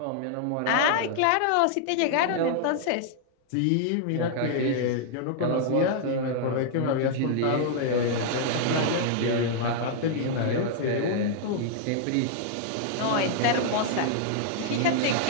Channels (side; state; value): both; different; correlation -0.01